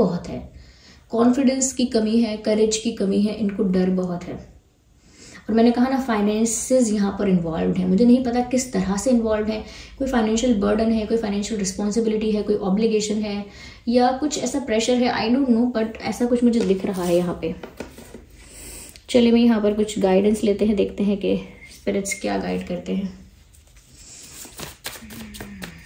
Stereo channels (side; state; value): both; identical; correlation 1.00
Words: है, कॉन्फिडेंस की कमी है, करेज की कमी है, इनको डर बहुत है। और मैंने कहा ना, फाइनेंसेस यहाँ पर इन्वॉल्व है, मुझे नहीं पता किस तरह से इन्वॉल्व है, कोई फाइनेंशियल बर्डन है, कोई फाइनेंशियल रिस्पॉन्सिबिलिटी है, कोई ऑब्लिगेशन है, या कुछ ऐसा प्रेशर है, आई डोंट नो, बट ऐसा कुछ मुझे दिख रहा है यहाँ पे। चलिए मैं यहाँ पर कुछ गाइडेंस लेते हैं, देखते हैं कि स्पिरिट्स क्या गाइड करते हैं।